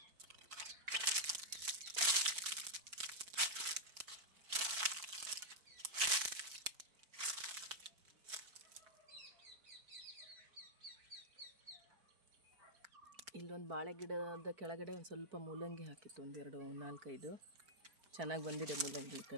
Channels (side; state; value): left; late; 4.5 ms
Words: ಇಲ್ಲೊಂದು ಬಾಳೆ ಗಿಡದ ಕೆಳಗಡೆ ಒಂದು ಸ್ವಲ್ಪ ಮೂಲಂಗಿ ಹಾಕಿತ್ತು. 4-5 ಚೆನ್ನಾಗಿ ಬಂದಿದೆ ಮೂಲಂಗಿ. ಈ